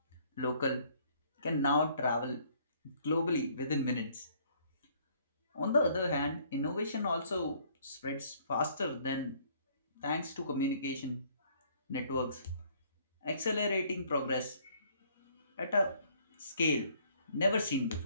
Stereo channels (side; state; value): both; inverted; correlation -0.62